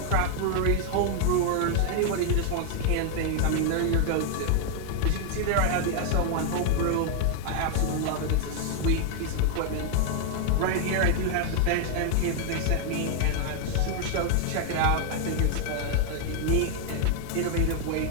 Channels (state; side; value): different; both; correlation 0.00